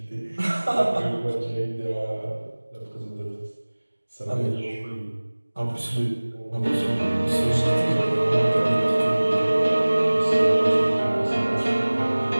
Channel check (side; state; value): both; inverted; correlation -1.00